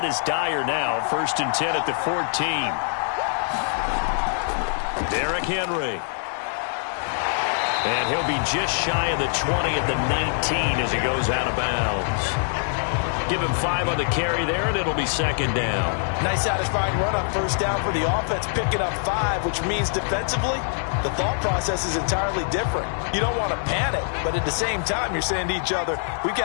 as dire now. 1st and 10 at the 14. Derrick Henry. And he'll be just shy of the 20 at the 19 as he goes out of bounds. Give him 5 on the carry there, and it'll be 2nd down. Nice satisfying run on 1st down for the offense, picking up 5, which means defensively, the thought process is entirely different. You don't want to panic, but at the same time, you're saying to each other, we've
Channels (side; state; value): right; silent; 63 dB below the other